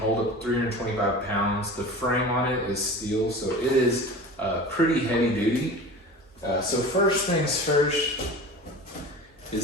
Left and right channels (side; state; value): both; normal; correlation 0.35